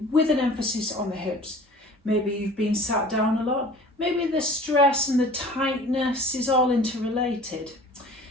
with an emphasis on the hips. Maybe you've been sat down a lot, maybe the stress and the tightness is all interrelated.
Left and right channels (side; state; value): both; normal; correlation 0.46